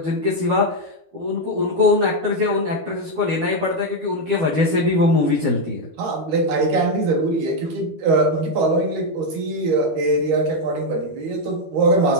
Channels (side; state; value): left; late; 13 ms